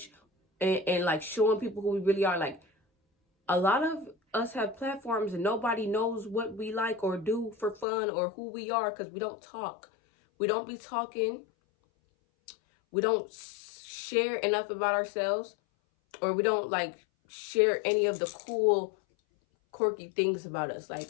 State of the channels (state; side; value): drops out; right; at 7.9 s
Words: and like showing people who we really are. Like, a lot of us have platforms and nobody knows what we like or do for fun or who we are because we don't talk. We don't be talking. We don't share enough about ourselves, or we don't like share any of the cool, quirky things about us. Like,